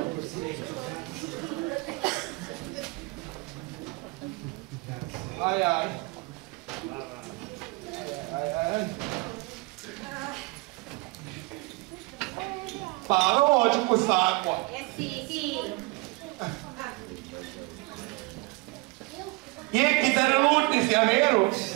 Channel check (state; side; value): quieter; left; 25.3 dB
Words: Ai ai. Ai ai. Parlo oggi con quest'acqua. Sì. E chi te ne lutti sia vero?